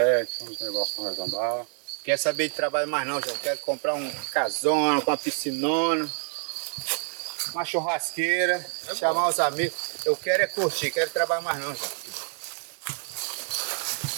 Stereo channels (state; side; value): silent; left; 60 dB below the other